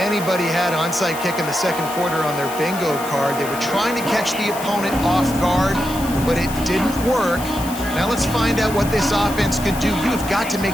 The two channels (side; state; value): left; noise; hiss, 12 dB below the sound